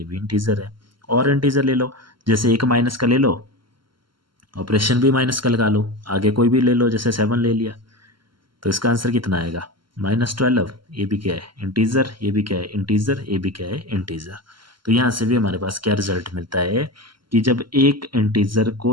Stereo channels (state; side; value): late; left; 0.73 ms